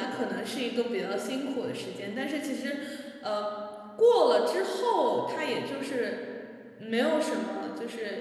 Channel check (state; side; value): identical; both; correlation 1.00